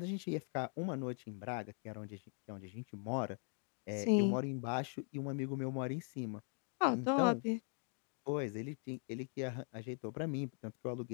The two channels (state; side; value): silent; right; 50 dB below the other